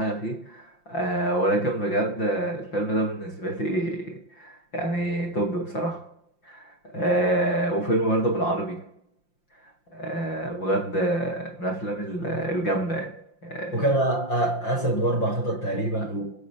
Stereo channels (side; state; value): right; late; 5.8 ms